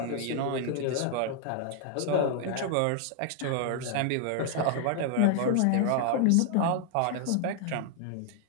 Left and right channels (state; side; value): different; both; correlation 0.00